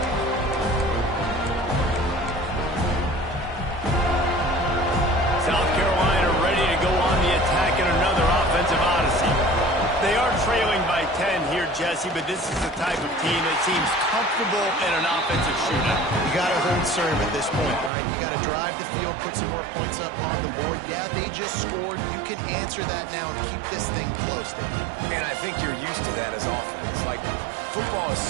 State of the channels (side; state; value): left; drops out; at 17.9 s